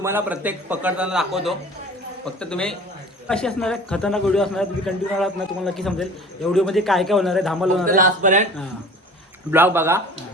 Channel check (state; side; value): normal; both; correlation 0.43